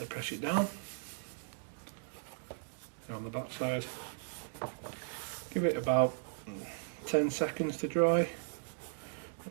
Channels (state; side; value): silent; left; digital silence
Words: press it down on the back side. Give it about 10 seconds to dry.